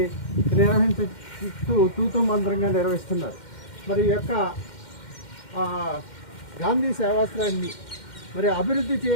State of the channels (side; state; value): right; late; 2.1 ms